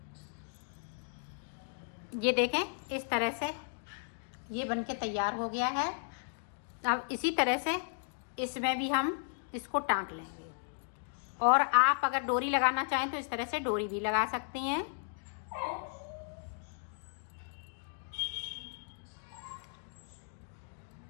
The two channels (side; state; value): right; silent; digital silence